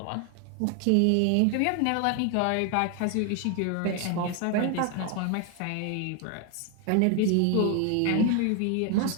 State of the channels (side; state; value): both; different; correlation 0.01